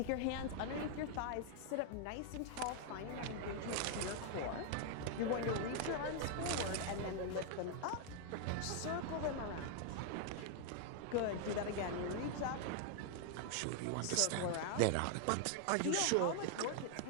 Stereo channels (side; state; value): both; different; correlation 0.00